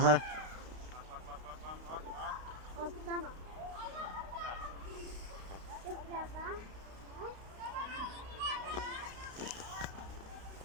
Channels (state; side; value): late; left; 32 ms